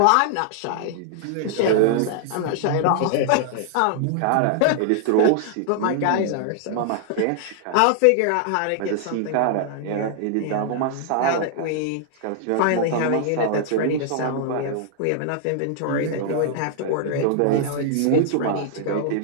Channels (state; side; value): different; both; correlation -0.01